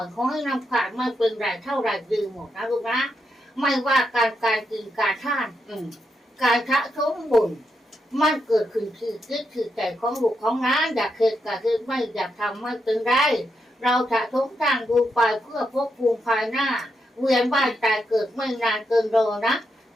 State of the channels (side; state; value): both; normal; correlation 0.83